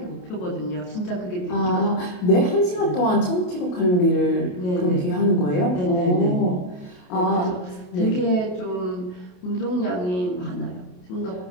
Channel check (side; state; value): right; late; 28 ms